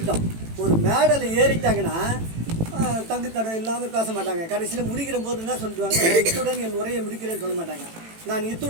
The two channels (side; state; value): left; late; 18 ms